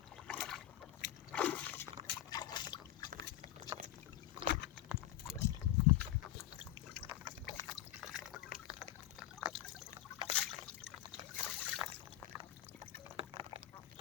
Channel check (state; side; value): quieter; right; 13.9 dB